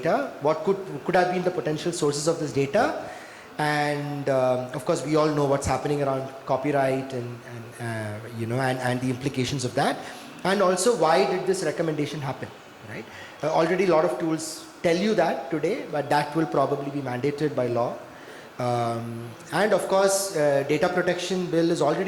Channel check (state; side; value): identical; both; correlation 1.00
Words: What could have been the potential sources of this data? And of course, we all know what's happening around copyright and the implications of that. And also, why did this recommendation happen, right? Already a lot of tools tell you that today, but that will probably be mandated by law. And of course, data protection bill is